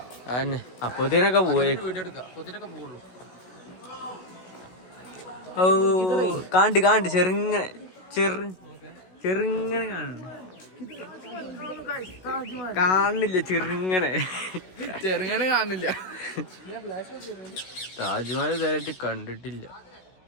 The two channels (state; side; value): late; right; 16 ms